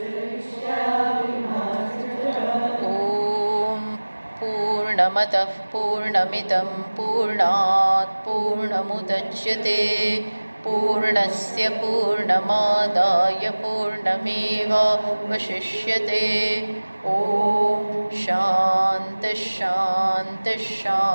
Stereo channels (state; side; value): inverted; both; correlation -1.00